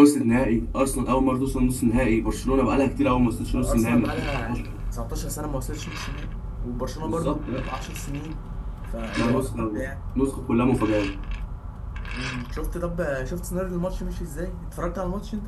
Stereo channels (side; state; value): both; identical; correlation 1.00